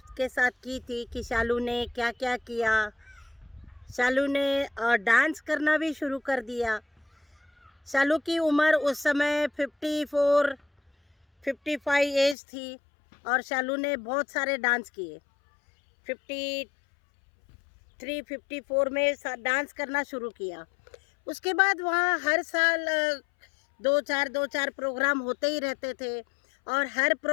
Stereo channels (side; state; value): right; drops out; at 12.4 s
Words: साथ की थी कि शालू ने क्या क्या किया। शालू ने डांस करना भी शुरू कर दिया। शालू की उम्र उस समय 55 एज थी और शालू ने बहुत सारे डांस किए। 53-54 में डांस करना शुरू किया। उसके बाद वहाँ हर साल दो चार प्रोग्राम होते ही रहते थे और हर